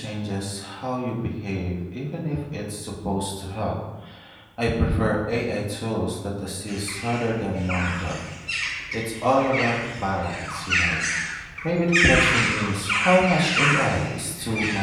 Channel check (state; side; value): identical; both; correlation 1.00